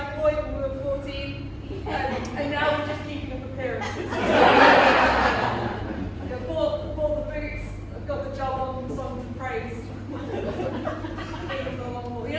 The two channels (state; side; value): identical; both; correlation 1.00